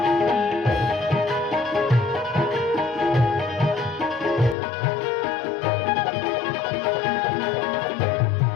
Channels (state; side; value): drops out; right; at 4.5 s